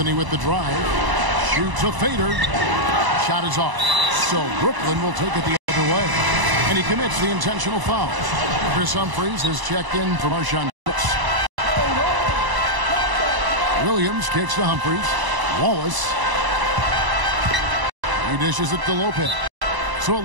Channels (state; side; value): late; left; 1.0 ms